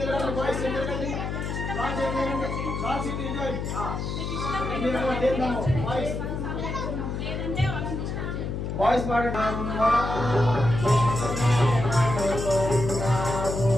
boys ఎదురుగండి, boys ఎదురుగండి, బాయ్స్ ఇటు ఏందమ్మో బాయ్స్ బాయ్స్ పాడండి.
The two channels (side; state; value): left; noise; hum, 3 dB below the sound